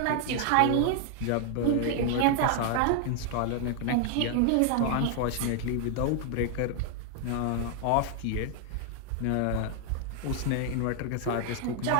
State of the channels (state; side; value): different; both; correlation 0.00